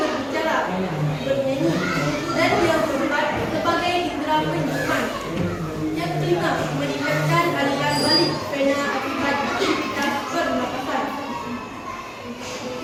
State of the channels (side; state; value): both; identical; correlation 1.00